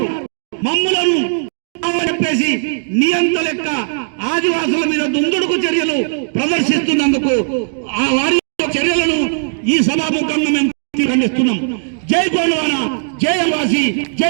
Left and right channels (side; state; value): left; silent; digital silence